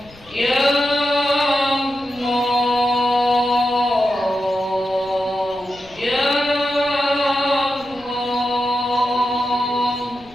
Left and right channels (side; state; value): left; noise; rumble, 24 dB below the sound